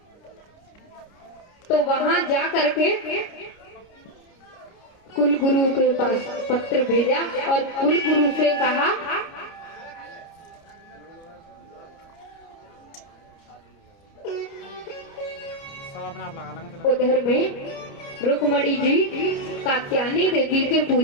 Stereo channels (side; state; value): right; late; 30 ms